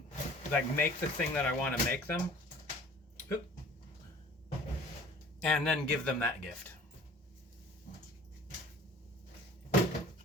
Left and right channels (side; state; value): both; normal; correlation 0.48